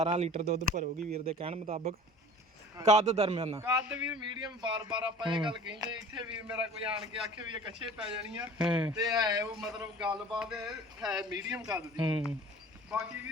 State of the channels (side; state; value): both; normal; correlation 0.44